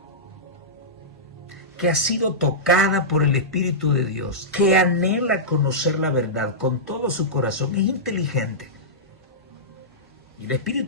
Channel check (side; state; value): both; normal; correlation -0.15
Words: que ha sido tocada por el Espíritu de Dios, que anhela conocer la verdad con todo su corazón, es inteligente. Y el